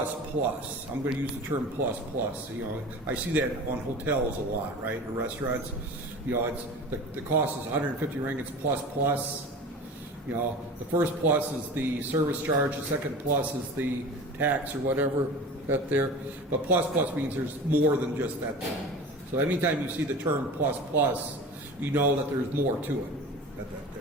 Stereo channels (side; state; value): both; normal; correlation 0.35